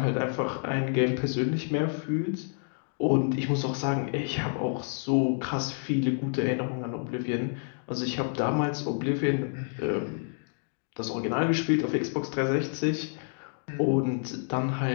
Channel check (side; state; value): right; silent; 59 dB below the other